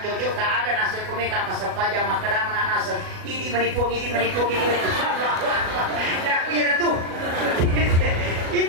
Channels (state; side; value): late; left; 37 ms